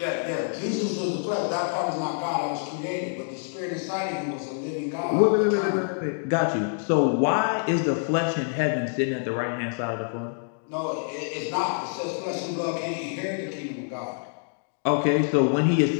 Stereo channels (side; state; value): right; silent; digital silence